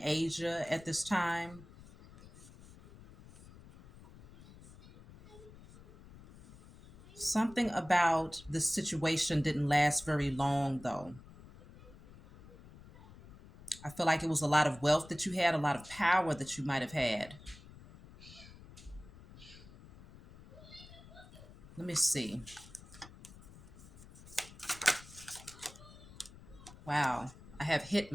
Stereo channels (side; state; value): left; noise; rumble, 19 dB below the sound